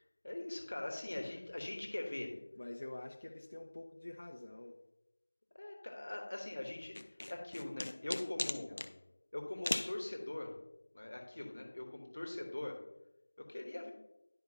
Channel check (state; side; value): inverted; both; correlation -1.00